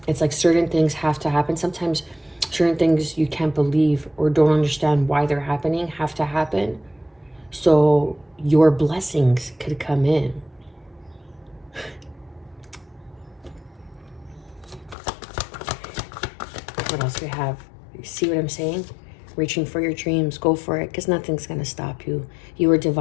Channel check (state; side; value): drops out; right; at 15.0 s